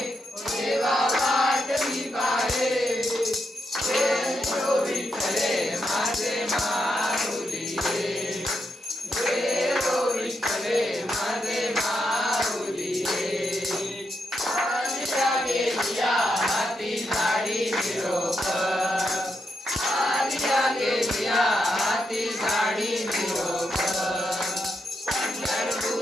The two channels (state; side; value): normal; both; correlation 0.83